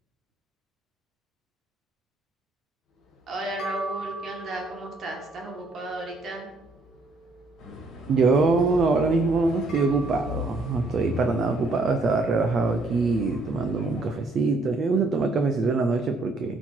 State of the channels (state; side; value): quieter; left; 3.1 dB